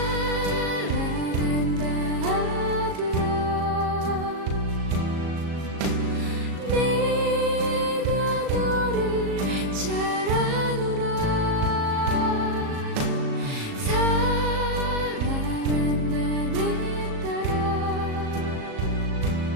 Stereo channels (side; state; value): left; late; 37 ms